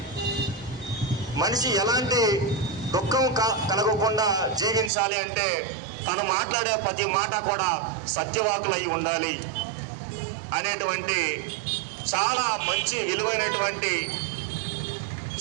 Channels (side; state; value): left; drops out; at 4.9 s